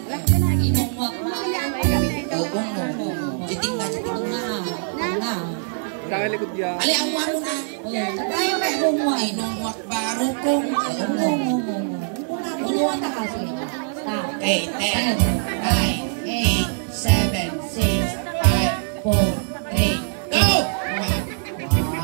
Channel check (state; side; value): silent; left; digital silence